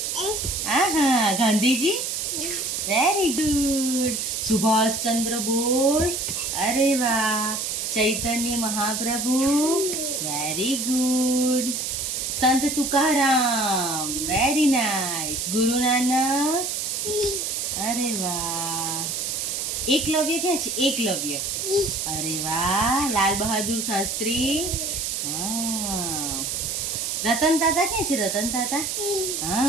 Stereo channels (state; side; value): noise; right; hiss, 2 dB below the sound